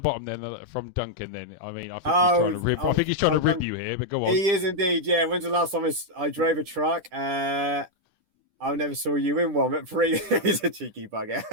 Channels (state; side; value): late; left; 10 ms